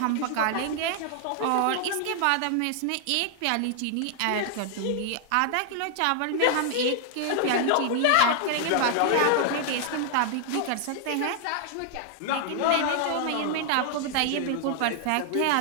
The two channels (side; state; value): both; different; correlation 0.00